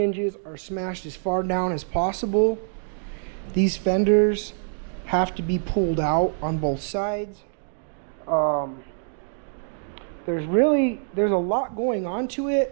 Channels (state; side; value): silent; left; digital silence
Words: are smashed as far down as possible. These fenders have to be pulled out on both sides. There's a lot going on to